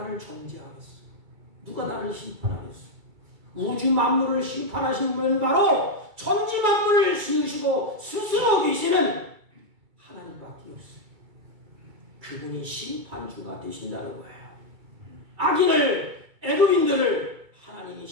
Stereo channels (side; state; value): left; late; 2.3 ms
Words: 정죄하겠어? 누가 나를 심판하겠어? 우주 만물을 심판하신 분은 바로 천지 만물을 지으시고 스스로 계시는 하나님밖에 없어요. 그분이 심판주가 되신다는 거예요. 악인을, 애굽인들을 하나님이